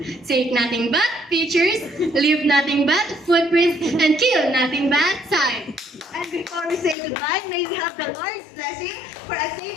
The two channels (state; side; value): drops out; right; at 7.0 s